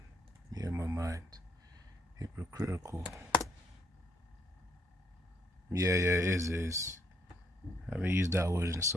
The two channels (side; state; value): both; normal; correlation 0.71